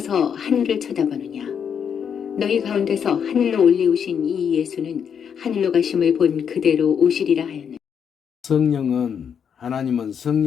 하늘을 쳐다보느냐. 너희 가운데서 하늘로 올리우신 이 예수는 하늘로 가심을 본 그대로 오시리라 하였느니라. 성령은 하나님은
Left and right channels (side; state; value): right; quieter; 7.6 dB